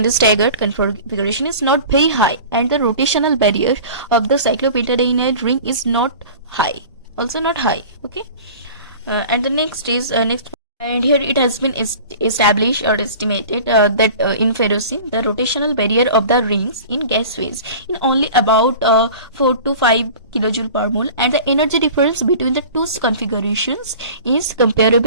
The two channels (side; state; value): both; inverted; correlation -0.40